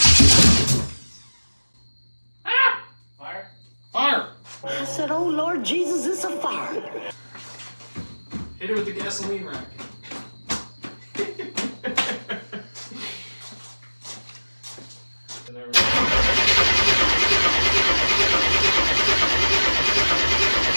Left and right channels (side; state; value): both; inverted; correlation -1.00